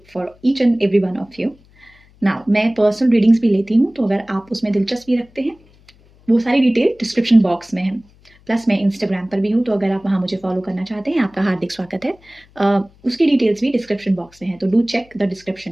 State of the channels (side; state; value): left; noise; hum, 29 dB below the sound